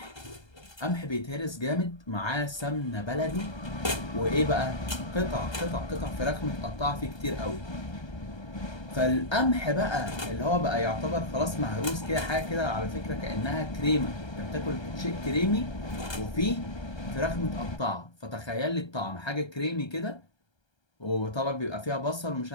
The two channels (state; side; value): late; right; 1.3 ms